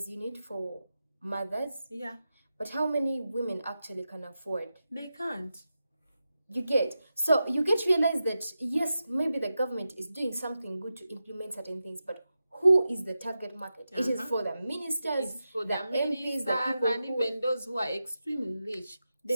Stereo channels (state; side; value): inverted; both; correlation -0.91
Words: unit for mothers? Yeah. But how many women actually can afford? They can't. You get. So you get to realize that, yes, maybe the government is doing something good to implement certain things, but who is the target market? It is for the ministers, it's for the MPs, the people and even those who are extremely rich.